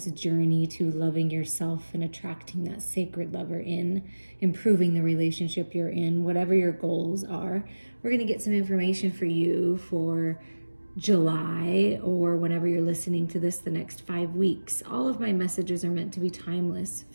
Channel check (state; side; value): inverted; both; correlation -1.00